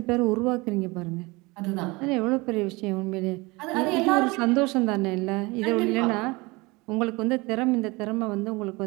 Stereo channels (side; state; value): left; quieter; 24.3 dB